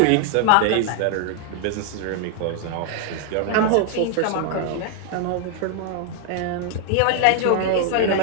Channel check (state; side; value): different; both; correlation 0.00